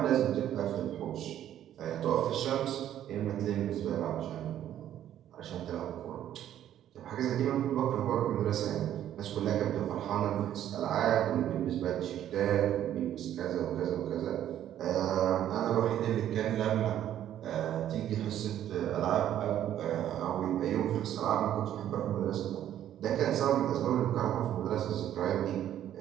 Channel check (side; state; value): left; quieter; 11.3 dB